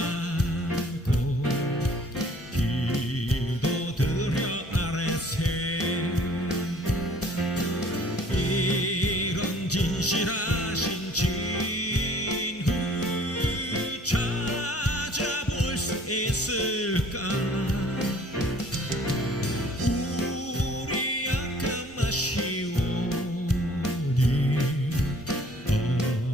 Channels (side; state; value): both; normal; correlation 0.54